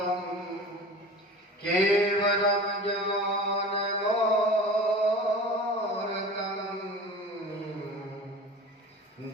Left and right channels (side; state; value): both; normal; correlation 0.37